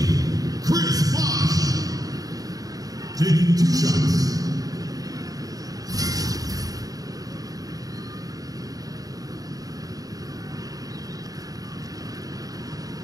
Chris Bosch. Taking 2 shots.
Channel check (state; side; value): late; left; 0.18 ms